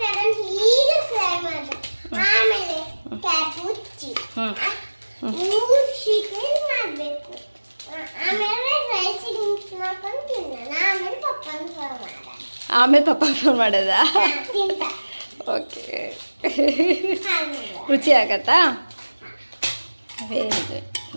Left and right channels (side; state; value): both; inverted; correlation -1.00